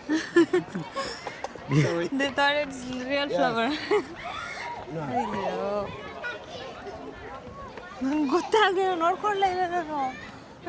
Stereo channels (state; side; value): identical; both; correlation 1.00